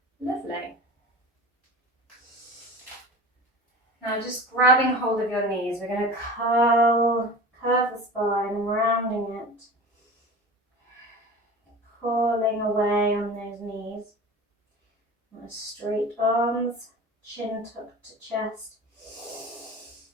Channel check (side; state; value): both; normal; correlation 0.36